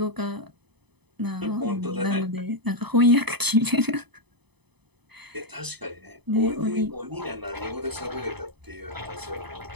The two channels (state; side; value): late; left; 0.99 ms